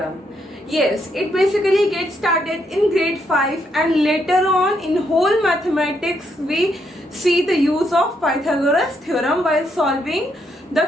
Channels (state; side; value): normal; both; correlation 0.76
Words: Yes, it basically gets started in grade 5 and later on in whole mathematics we see the use of Pythagoras Theorem while solving the